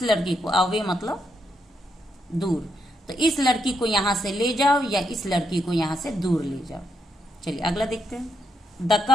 लड़की को, अवे मतलब दूर, तो इस लड़की को यहां से ले जाओ या इस लड़की को यहां से दूर ले जाओ। चलिए अगला देखते हैं। The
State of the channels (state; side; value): normal; both; correlation 0.80